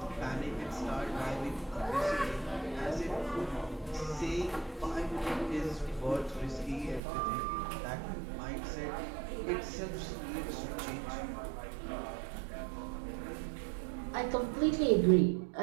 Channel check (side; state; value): left; drops out; at 7.0 s